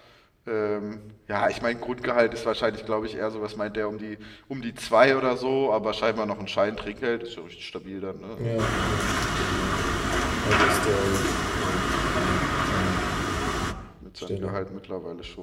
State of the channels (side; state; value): both; identical; correlation 1.00